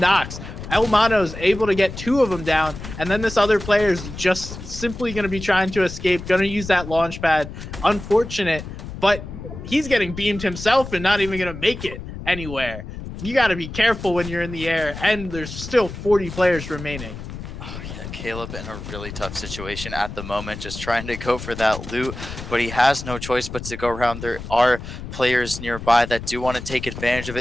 El Mano's able to get 2 of them down, and then this other player is just simply going to be trying to escape, going to use that launch pad. Unfortunate, but he's getting beamed himself and not even going to make it anywhere. You got to be careful when you're in the air, and there's still 40 players remaining. Oh, yeah, Caleb in a really tough situation at the moment, just trying to go for that loot, but he has no choice but to go around. There are players nearby that do want to take advantage of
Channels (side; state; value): left; noise; rumble, 10 dB below the sound